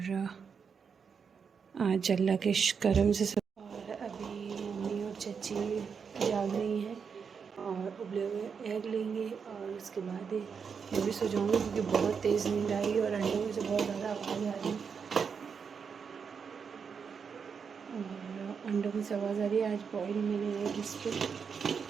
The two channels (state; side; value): quieter; left; 6.2 dB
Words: आज अल्लाह के करम से सब। और अभी मम्मी और चाची जाग रही हैं और उबले हुए एग लेंगे और उसके बाद मैं भी सो जाऊँगी, क्योंकि बहुत तेज़ नींद आई और अंडों में से बहुत ज़्यादा आवाज़ आ रही है। और अंडों में से आवाज़ आ रही है। आज बॉयल मैंने एग इस पर,